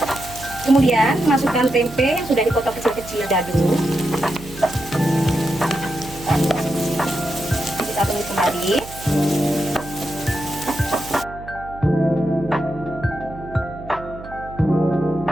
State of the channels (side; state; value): right; noise; hum, 15 dB below the sound